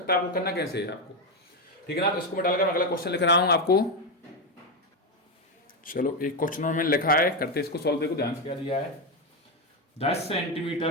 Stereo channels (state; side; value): normal; both; correlation 0.09